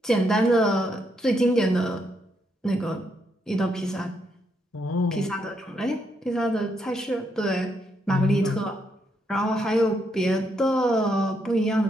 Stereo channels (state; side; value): normal; both; correlation 0.77